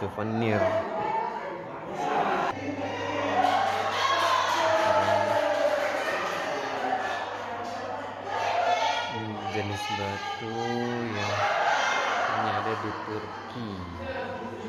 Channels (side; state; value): both; identical; correlation 1.00